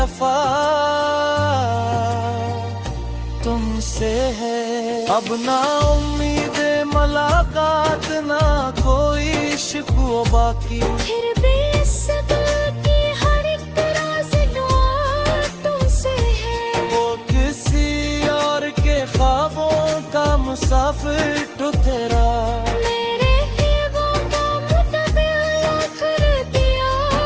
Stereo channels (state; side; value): identical; both; correlation 1.00